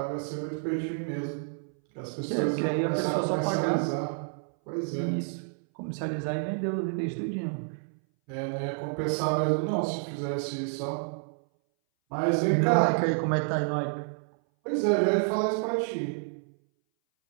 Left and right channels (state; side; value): silent; left; 58 dB below the other